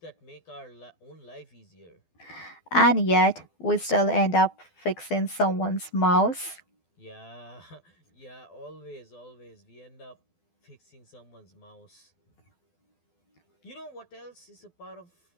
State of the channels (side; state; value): right; late; 12 ms